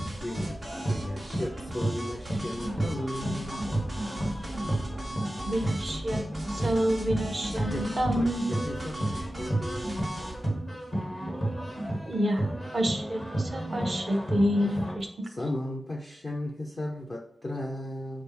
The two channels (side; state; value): both; normal; correlation 0.93